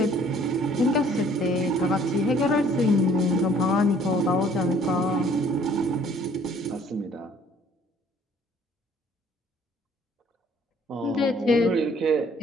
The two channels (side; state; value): both; normal; correlation 0.58